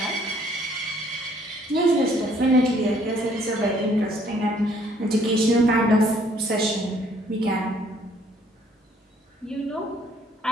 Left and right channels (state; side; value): normal; both; correlation 0.63